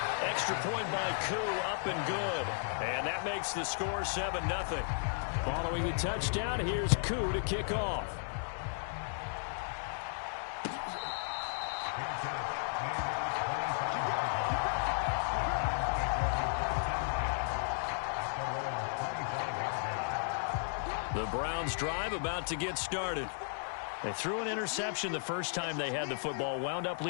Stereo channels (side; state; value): right; silent; digital silence